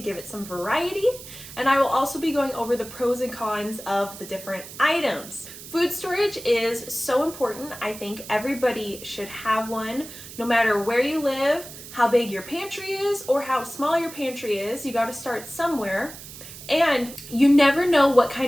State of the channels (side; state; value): right; noise; hiss, 14 dB below the sound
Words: give it some variety. And I will also be going over the pros and cons of the different items. Food storage is so important. I think everybody should have one, no matter where you live, how big your pantry is, or how small your pantry is. You got to start somewhere. And you never know what